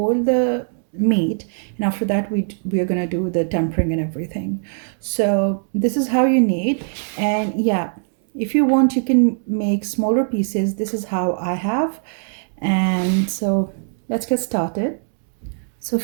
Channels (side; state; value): left; silent; digital silence